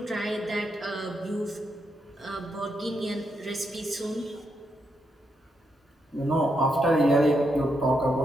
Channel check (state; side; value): normal; both; correlation 0.81